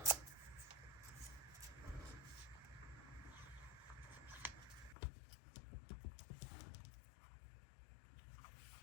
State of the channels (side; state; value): right; drops out; at 5.0 s